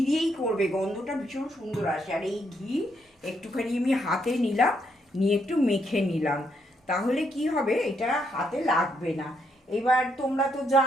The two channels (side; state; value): both; normal; correlation 0.76